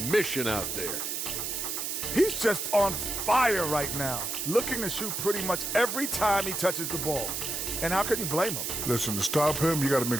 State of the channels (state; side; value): noise; right; hiss, 3 dB below the sound